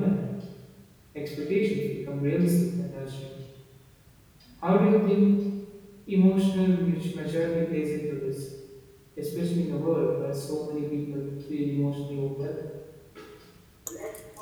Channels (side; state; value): both; identical; correlation 1.00